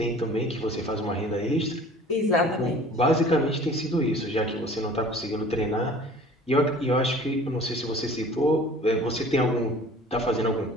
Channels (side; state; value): both; normal; correlation 0.47